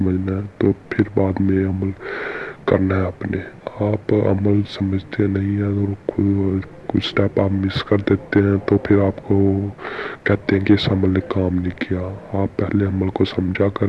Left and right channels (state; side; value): identical; both; correlation 1.00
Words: है, तो फिर बाद में अमल करना है अपने। आप अमल समझते नहीं हैं और कुछ स्टेप आप मिस कर देते हैं तो फिर आपको कहते हैं कि इस अमल ने काम नहीं किया। आप पहले अमल को समझा